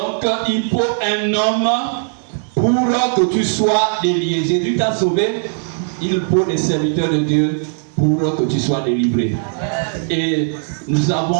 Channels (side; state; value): left; silent; digital silence